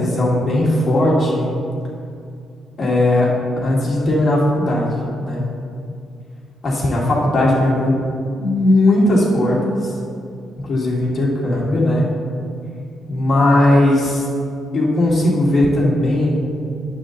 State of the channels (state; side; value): normal; both; correlation 0.83